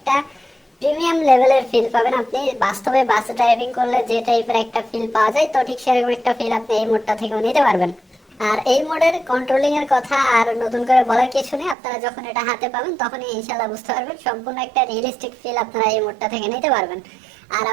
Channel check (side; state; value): left; drops out; at 11.8 s